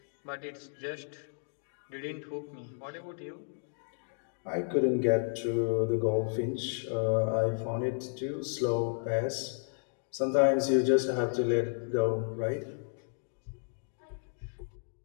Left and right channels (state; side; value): silent; right; digital silence